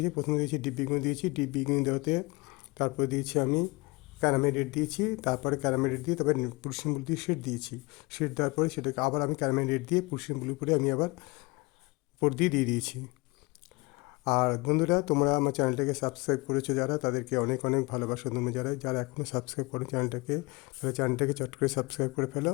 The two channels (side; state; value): right; quieter; 25.0 dB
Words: প্রথমে দিয়েছি ডিপ বেগুনি দিয়েছি। ডিপ বেগুনি দেওয়াতে তারপরে দিয়েছি আমি ক্যারামেল রেড দিয়েছি। তারপরে ক্যারামেল রেড দিয়ে তারপরে পুরসিয়ান ব্লু দিয়ে শেড দিয়েছি। শেড দেওয়ার পরে সেটাকে আবার আমি ক্যারামেল রেড দিয়ে পুরসিয়ান ব্লু করে আমি আবার উপর দিয়ে দিয়েছি। আর বন্ধুরা, তোমরা আমার চ্যানেলটাকে সাবস্ক্রাইব করেছো যারা, তাদেরকে অনেক অনেক ভালোবাসা। তোমরা যারা এখনও সাবস্ক্রাইব করো চ্যানেলটাকে, তাহলে চ্যানেলটাকে চট করে সাবস্ক্রাইব করে ফেলো।